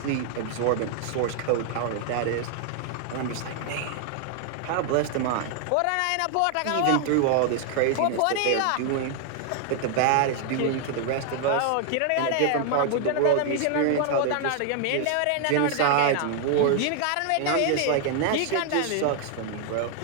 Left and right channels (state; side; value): different; both; correlation 0.00